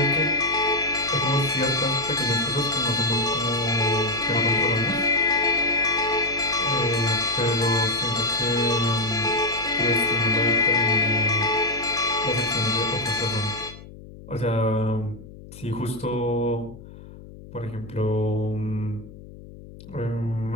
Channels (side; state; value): left; noise; hum, 17 dB below the sound